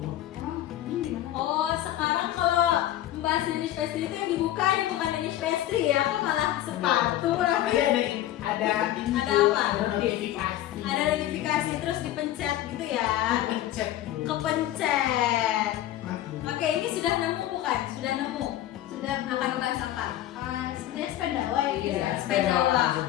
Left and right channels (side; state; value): right; quieter; 13.3 dB